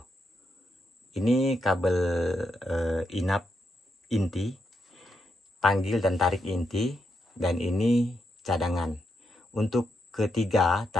Ini kabel inap inti, panggil dan tarik inti, dan ini cadangan. Untuk ketiga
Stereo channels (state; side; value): normal; both; correlation 0.82